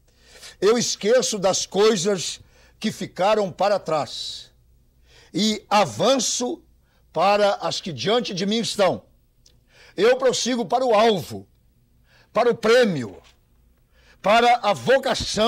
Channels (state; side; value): identical; both; correlation 1.00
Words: Eu esqueço das coisas que ficaram para trás e avanço para as que diante de mim estão. Eu prossigo para o alvo, para o prêmio, para a